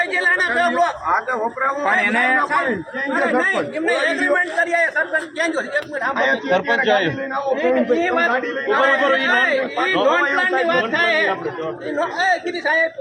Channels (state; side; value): identical; both; correlation 1.00